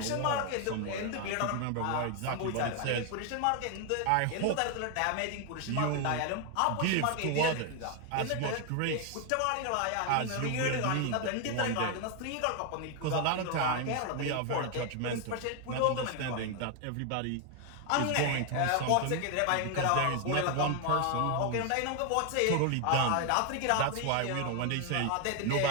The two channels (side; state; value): both; different; correlation 0.01